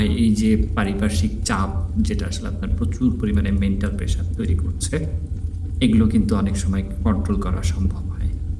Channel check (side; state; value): both; identical; correlation 1.00